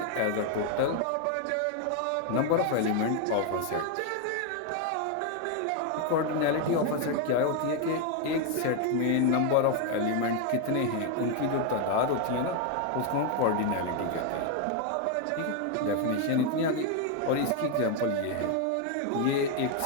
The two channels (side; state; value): both; different; correlation 0.01